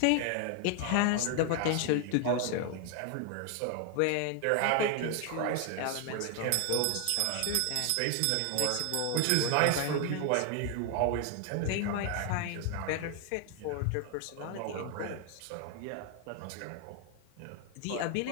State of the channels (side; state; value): both; different; correlation 0.00